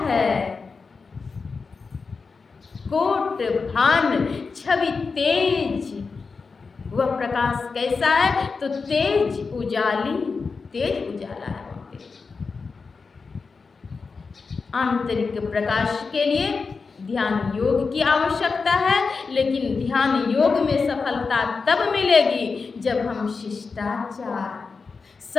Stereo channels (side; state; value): right; quieter; 4.7 dB